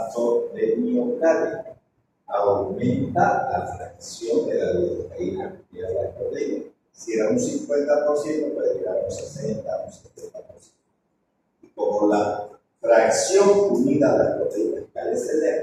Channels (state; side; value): identical; both; correlation 1.00